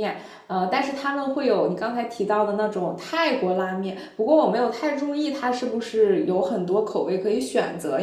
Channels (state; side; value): identical; both; correlation 1.00